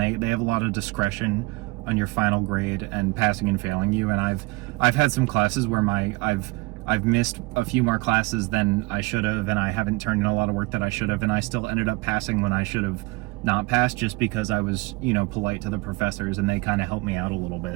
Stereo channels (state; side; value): quieter; left; 24.3 dB